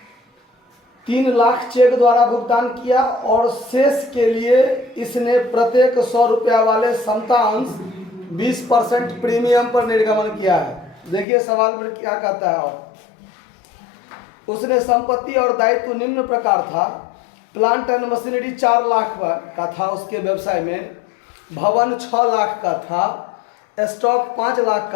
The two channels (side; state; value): right; drops out; at 11.2 s